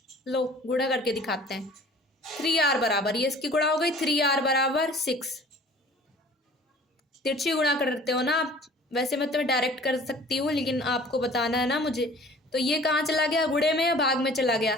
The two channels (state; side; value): normal; both; correlation 0.48